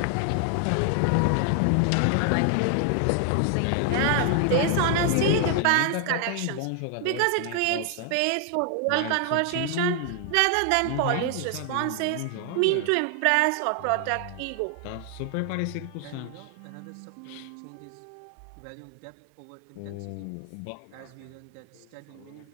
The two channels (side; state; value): both; different; correlation 0.00